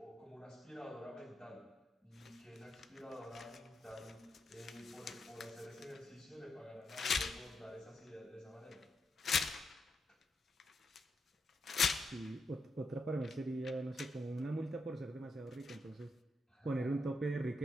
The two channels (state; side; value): normal; both; correlation 0.82